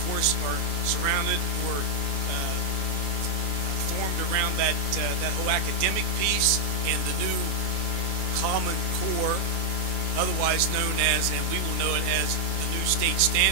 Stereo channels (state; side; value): late; left; 30 ms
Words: course, are surrounded or formed around that whole academic piece and the new Common Core, otherwise known as, and we will know it as, the new state